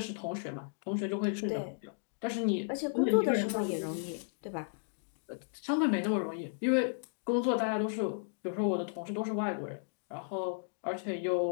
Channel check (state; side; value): silent; right; digital silence